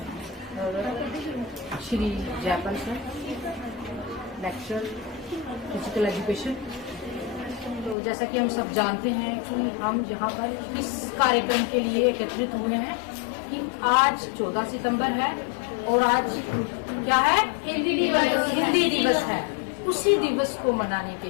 और Shri Jaipal sir lecturer physical education. तो जैसा कि हम सब जानते हैं कि हम यहाँ पर इस कार्यक्रम के लिए एकत्रित हुए हैं कि आज 14 सितंबर है और आज क्या है, हिंदी दिवस है। उसी दिवस को मनाने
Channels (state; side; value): drops out; right; at 8.0 s